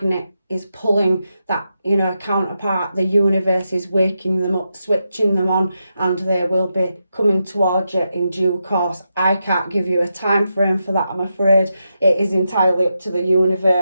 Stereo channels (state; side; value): inverted; both; correlation -0.86